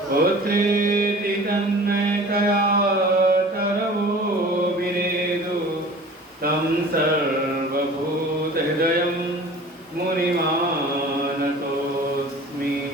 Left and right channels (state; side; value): normal; both; correlation 0.43